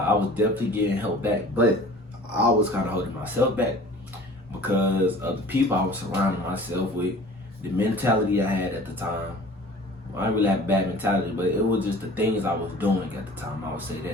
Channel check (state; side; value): normal; both; correlation 0.45